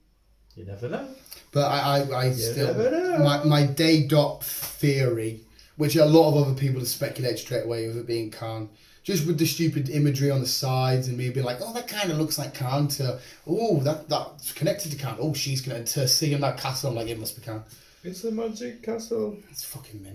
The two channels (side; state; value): both; identical; correlation 1.00